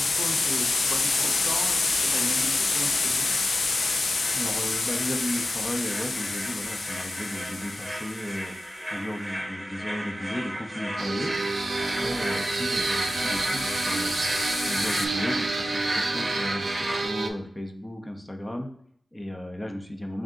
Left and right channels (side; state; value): both; normal; correlation 0.92